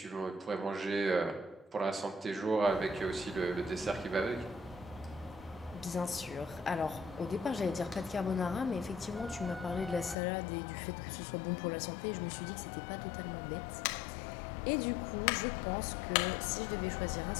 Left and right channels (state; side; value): drops out; right; at 10.2 s